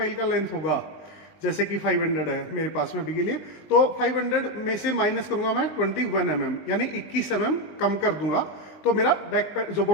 का लेंथ होगा, जैसे कि 500 है मेरे पास में अभी के लिए, तो 500 में से माइनस करूंगा मैं 21 mm, यानी 21 mm कम कर दूंगा। तो मेरा जो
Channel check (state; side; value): late; right; 20 ms